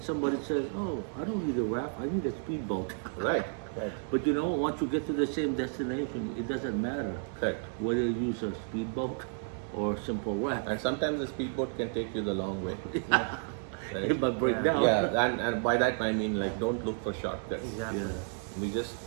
somebody says, oh, I don't need a raft, I need a speedboat. Right. Right. But you know, once you get to the same destination, it doesn't matter Correct. whether you use a speedboat or a simple raft. And sometimes the speedboat can take you the long way. Right? It might break Yeah. down. Yeah, and by that I mean like don't look for shortcuts. Exactly. Yeah. We just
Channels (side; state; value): left; silent; 57 dB below the other